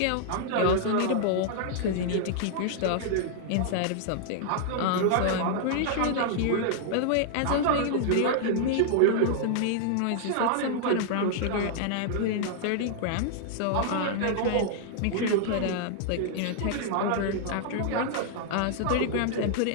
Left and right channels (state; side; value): different; both; correlation -0.01